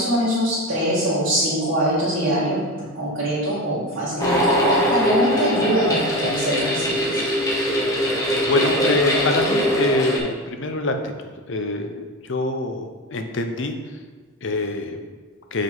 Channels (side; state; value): both; normal; correlation 0.22